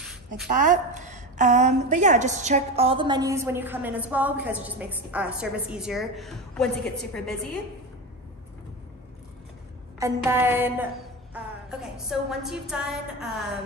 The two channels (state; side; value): normal; both; correlation 0.22